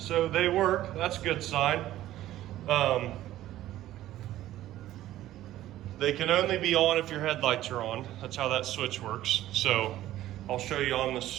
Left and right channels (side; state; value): left; quieter; 14.1 dB